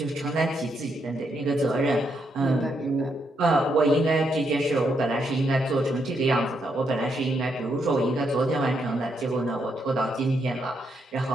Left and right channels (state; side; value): normal; both; correlation 0.78